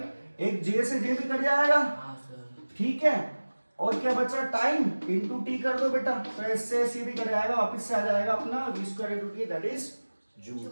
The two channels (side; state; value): both; inverted; correlation -1.00